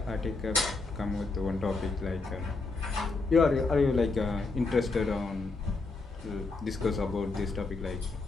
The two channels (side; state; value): right; quieter; 3.7 dB